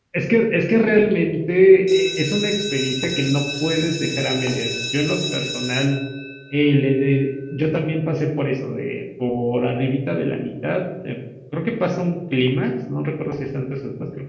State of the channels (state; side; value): identical; both; correlation 1.00